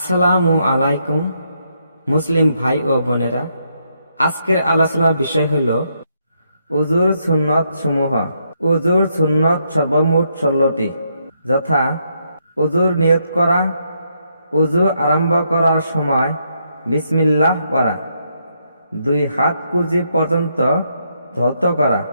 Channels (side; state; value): both; inverted; correlation -0.77